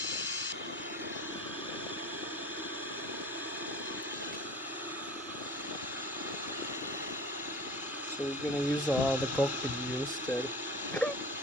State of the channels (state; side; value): normal; both; correlation 0.39